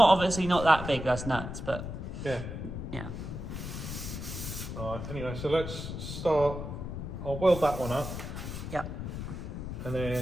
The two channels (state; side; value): noise; left; rumble, 6 dB below the sound